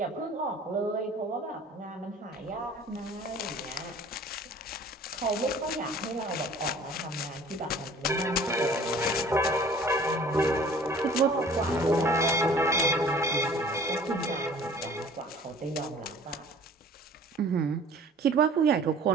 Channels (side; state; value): both; normal; correlation 0.49